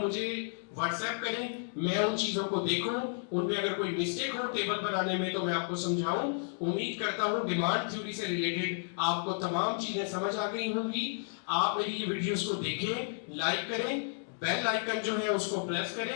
व्हाट्सएप करें, मैं उन चीजों को देखूं, उनमें अगर कोई मिस्टेक हो टेबल बनाने में तो मैं आपको समझाऊं। उम्मीद करता हूं डिमांड थ्योरी से रिलेटेड आपको तमाम चीजें समझ आ गई होंगी। आप मेरी ये वीडियोस को देखें, लाइक करें, बेल आइकन जो है उसको प्रेस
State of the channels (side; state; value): right; silent; digital silence